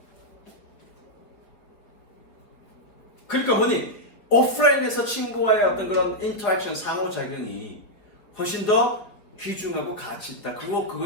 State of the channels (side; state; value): right; late; 4.9 ms